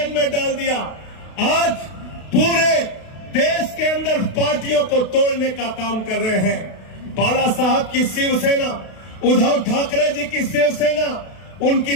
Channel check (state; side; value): late; right; 32 ms